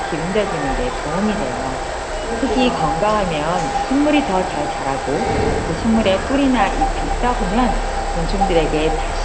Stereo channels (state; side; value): identical; both; correlation 1.00